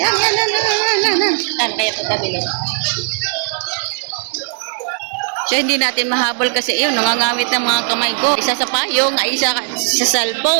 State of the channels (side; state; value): left; silent; digital silence